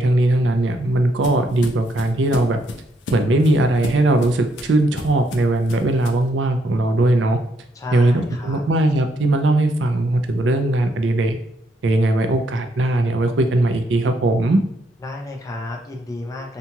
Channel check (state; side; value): normal; both; correlation 0.75